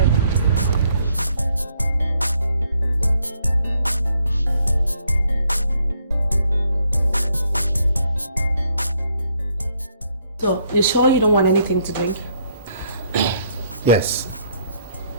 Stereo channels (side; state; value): both; inverted; correlation -0.70